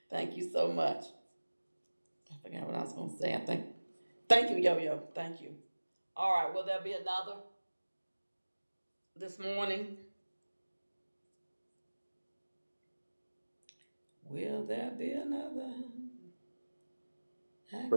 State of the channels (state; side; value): inverted; both; correlation -1.00